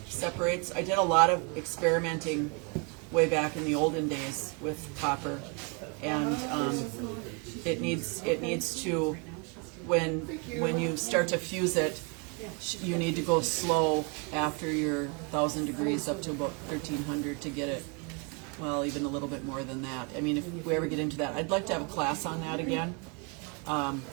separates. I did a lot of experimenting way back in the olden days with copper, and it needs to, when you start to fuse it, you need to go slow after your 1,000 degrees up to about 1,300 to get it. Well, even a little bit more than that. I mean, if we ever get into that, I'd like to have a class on that again.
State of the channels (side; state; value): left; quieter; 33.0 dB